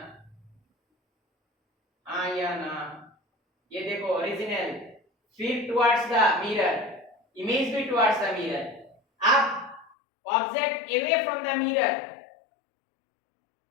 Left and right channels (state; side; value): drops out; right; at 9.9 s